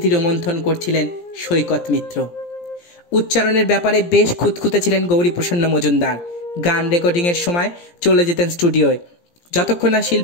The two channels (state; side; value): late; right; 17 ms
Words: রোমন্থন করছিলেন সৈকত মিত্র। উচ্চারণের ব্যাপারে বেশ খুঁতখুঁতে ছিলেন গৌরীপ্রসন্ন মজুমদার। গান রেকর্ডিংয়ের সময় চলে যেতেন স্টুডিওয়। যতক্ষণ না